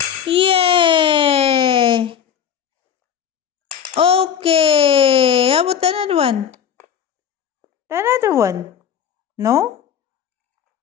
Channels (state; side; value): quieter; right; 8.5 dB